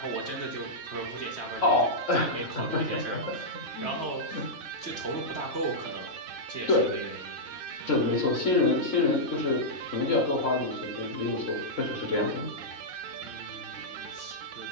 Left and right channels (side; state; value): right; late; 3.8 ms